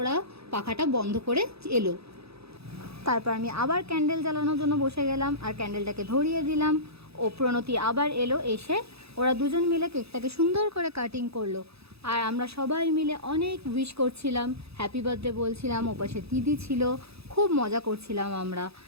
পাখাটা বন্ধ করে এলো। তারপর আমি আবার ক্যান্ডেল জ্বালানোর জন্য বসে গেলাম আর ক্যান্ডেলটাকে ধরিয়ে দিলাম। ও প্রণতি আবার এলো, এসে ওরা দুজন মিলে কেকটাকে সুন্দর করে কাটিং করলো। আর আমরা সবাই মিলে অনেক উইশ করছিলাম, হ্যাপি বার্থডে বলছিলাম, ওপাশে দিদি ছিল, খুব মজা করছিলাম আমরা।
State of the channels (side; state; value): left; late; 0.78 ms